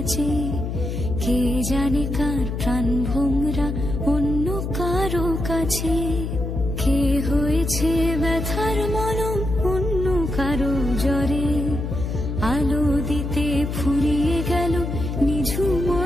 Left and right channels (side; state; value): left; noise; hum, 4 dB below the sound